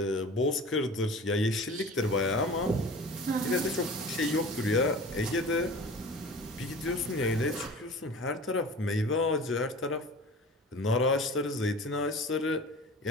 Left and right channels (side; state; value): both; normal; correlation 0.39